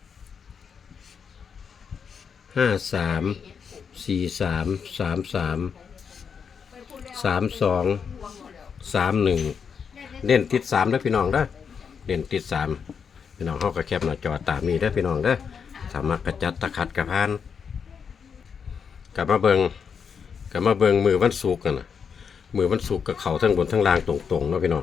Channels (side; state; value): right; quieter; 6.6 dB